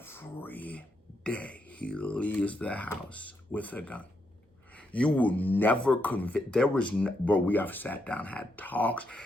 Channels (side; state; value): both; normal; correlation 0.80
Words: day he leaves the house with a gun. You will never convince, bro, we have sat down, had talks.